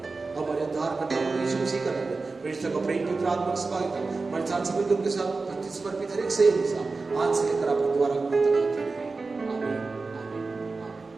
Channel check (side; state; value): left; quieter; 3.9 dB